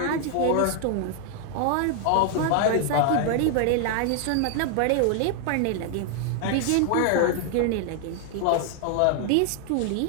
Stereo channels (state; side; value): different; both; correlation 0.00